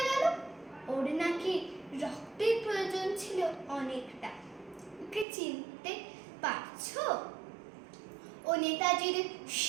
গেল। ওর নাকি রক্তের প্রয়োজন ছিল অনেকটা। ওকে চিনতে পারছো? ও নেতাজির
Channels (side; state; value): left; drops out; at 5.2 s